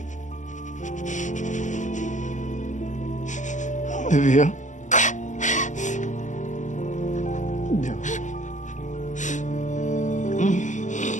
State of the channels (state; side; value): late; right; 0.35 ms